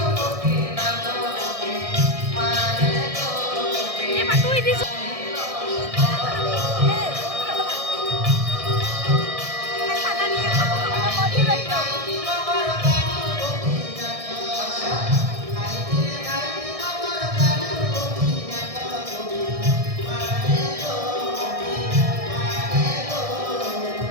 গোপীনাথ মারে গো এ মা তুই দিছ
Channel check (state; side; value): late; left; 1.6 ms